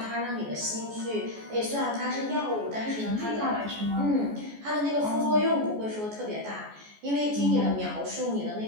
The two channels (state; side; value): late; left; 14 ms